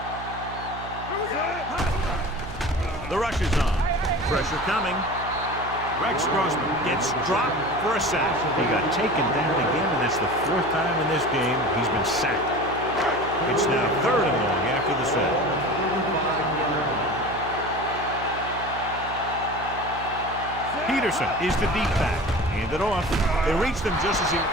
The rush is on. Pressure coming. Rex Grossman gets dropped for a sack. He got taken down again, and that's the fourth time in this game he's been sacked. It's now third and long after the sack. Peterson is the deep back. Hand it off. They reached him just as he...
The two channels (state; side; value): noise; right; hum, 12 dB below the sound